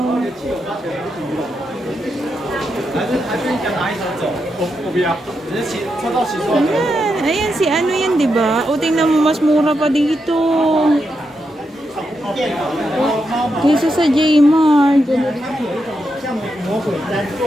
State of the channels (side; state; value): both; normal; correlation 0.84